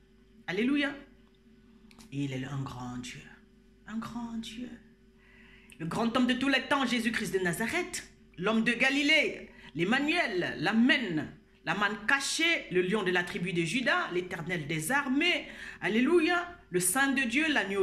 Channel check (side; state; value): both; identical; correlation 1.00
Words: Alléluia. Il est un grand Dieu, un grand Dieu. Le grand homme de tous les temps, Jésus-Christ de Nazareth, l'homme de Galilée, l'Emmanuel, l'Amen, la manne cachée, le lion de la tribu de Juda, l'Éternel des armées, alléluia, le Saint de Dieu,